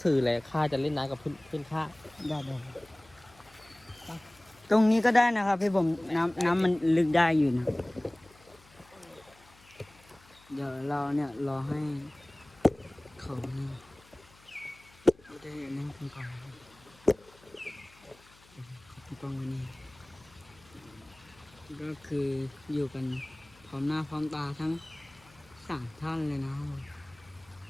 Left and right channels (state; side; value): noise; left; hum, 27 dB below the sound